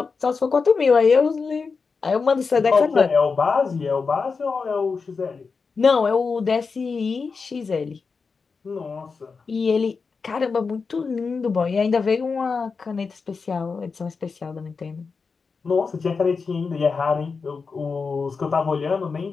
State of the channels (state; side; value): quieter; right; 4.9 dB